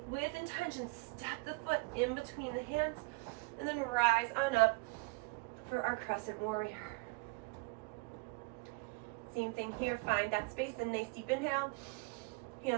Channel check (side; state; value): left; quieter; 27.0 dB